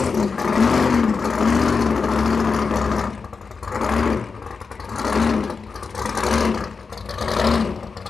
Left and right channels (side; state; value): right; quieter; 5.0 dB